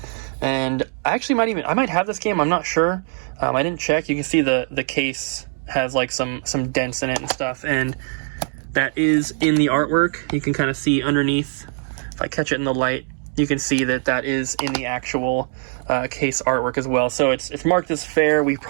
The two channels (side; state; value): left; silent; 60 dB below the other